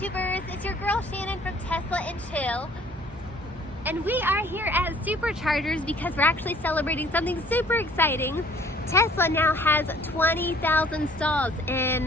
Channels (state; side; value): normal; both; correlation 0.55